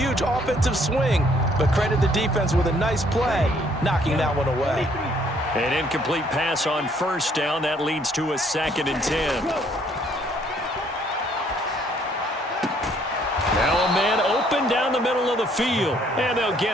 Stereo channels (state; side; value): normal; both; correlation 0.64